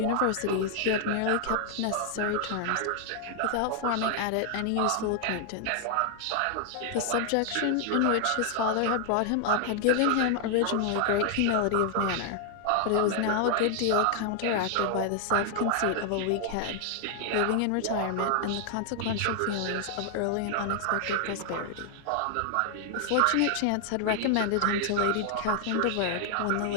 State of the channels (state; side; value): different; both; correlation 0.00